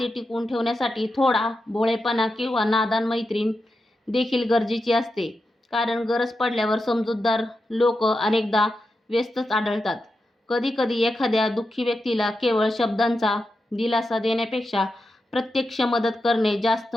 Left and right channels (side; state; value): both; normal; correlation 0.88